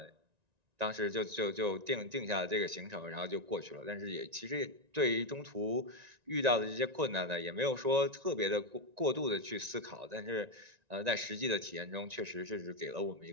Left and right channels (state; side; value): late; left; 1.9 ms